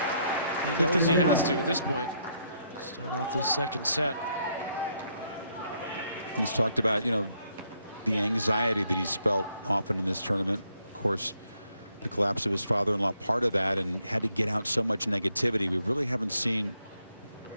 he knows he has to at this point. Start off this second set. He's talked about, you know, the anxiety that he's felt often in this tournament. Of course, the collapse of his father-in-law, part of that, and had to get out so much negativity. We really haven't seen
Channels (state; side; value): inverted; both; correlation -0.74